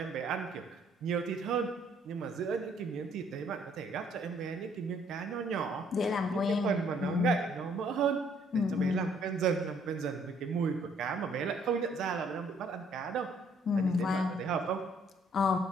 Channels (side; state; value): both; normal; correlation 0.64